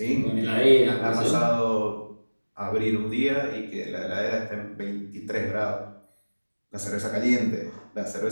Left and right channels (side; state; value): both; inverted; correlation -1.00